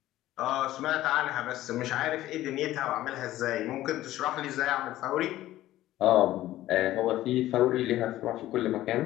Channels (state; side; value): quieter; right; 14.8 dB